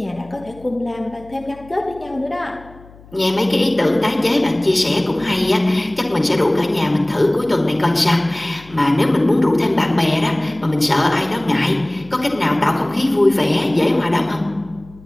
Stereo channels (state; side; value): noise; left; hum, 23 dB below the sound